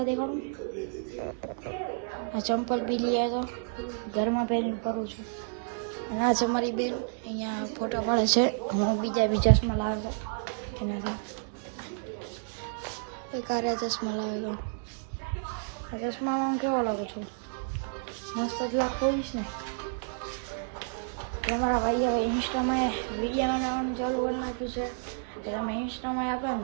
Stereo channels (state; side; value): silent; left; digital silence